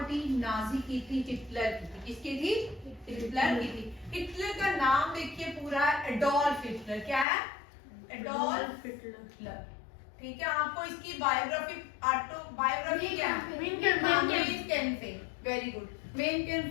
Nazi की थी, हिटलर की थी। किसकी थी? हिटलर की थी। हिटलर का नाम देखिए पूरा एडोल्फ हिटलर। क्या है? Adolf Hitler. ठीक है, आपको इसकी बायोग्राफी ऑटोबायोग्राफी क्या है? Mein Kampf. Very good. Mein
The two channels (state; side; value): drops out; right; at 7.2 s